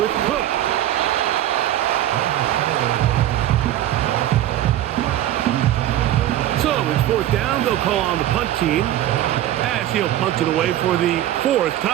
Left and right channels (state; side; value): quieter; left; 12.9 dB